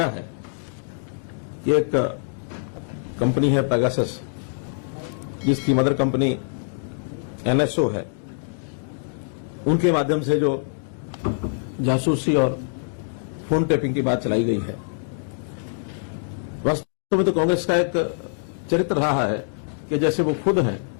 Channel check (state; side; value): silent; right; digital silence